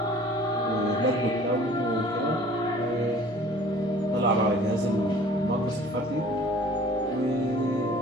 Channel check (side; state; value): both; normal; correlation 0.49